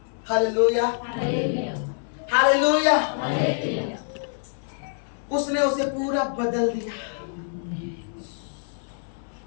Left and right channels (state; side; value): silent; right; 61 dB below the other